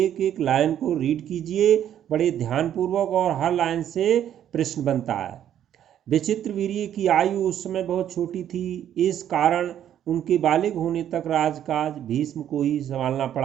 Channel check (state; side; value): quieter; left; 10.5 dB